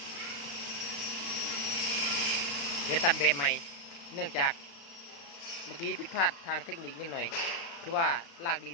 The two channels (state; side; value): late; right; 35 ms